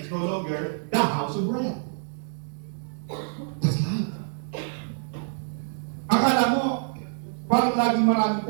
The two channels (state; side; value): silent; left; digital silence